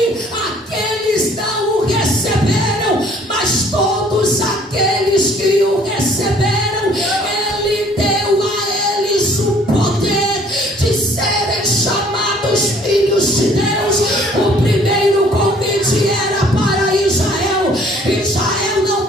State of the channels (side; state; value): both; normal; correlation 0.58